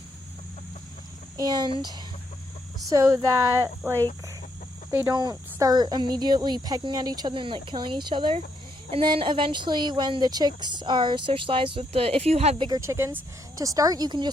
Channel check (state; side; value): normal; both; correlation 0.76